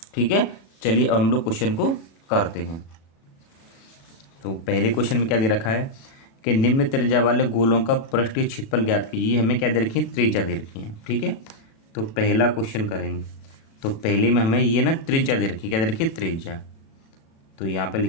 ठीक है, चलिए अब हम लोग क्वेश्चन को करते हैं। तो पहले क्वेश्चन में क्या दे रखा है कि निम्न त्रिज्या वाले गोलों का पृष्ठीय क्षेत्रफल ज्ञात कीजिए। हमें क्या दे रखी है, त्रिज्या दे रखी है। ठीक है, तो पहला क्वेश्चन करेंगे। तो पहले में हमें ये ना त्रिज्या दे रखी है, क्या दे रखी है, त्रिज्या। तो यहाँ पे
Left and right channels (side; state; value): right; late; 36 ms